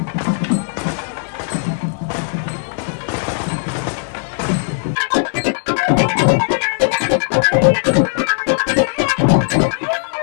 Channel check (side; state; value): right; silent; digital silence